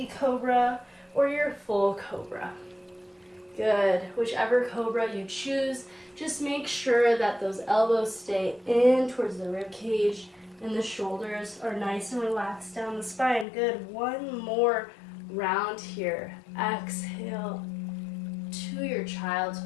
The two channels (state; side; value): drops out; right; at 13.5 s